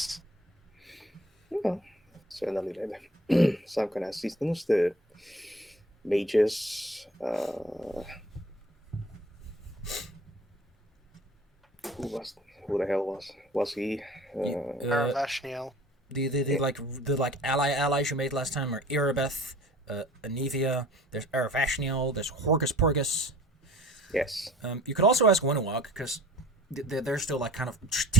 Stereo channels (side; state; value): both; normal; correlation 0.48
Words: Well, certainly some kind of assistance. The mages. Who the hell was he? Aravashniel. The allies you made last time are Irabeth, Anivia. There's Aravashniel. There's Horgus Porgus. Yes. You could also ask Winnewog because they're still like kind of